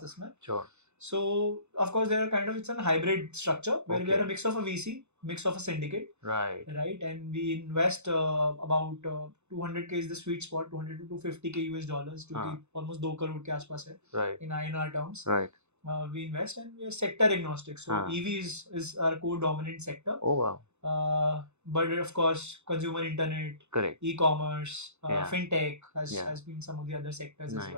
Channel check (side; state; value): left; late; 0.82 ms